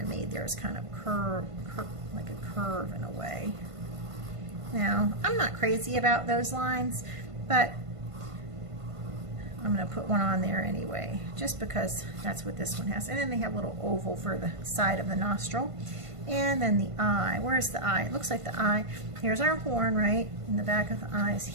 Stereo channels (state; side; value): late; left; 1.5 ms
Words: of made theirs kind of like a curve in a way. Now, I'm not crazy about those lines, but I'm going to put one on there anyway, just because that's what this one has. And then they have a little oval for the side of the nostril. And then the eye. Where's the eye? It looks like the eye. Here's our horn, right? And the back of the eye is